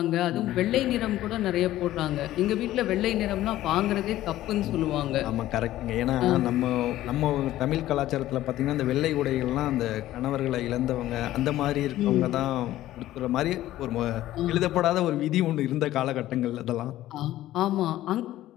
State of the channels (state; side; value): quieter; right; 14.5 dB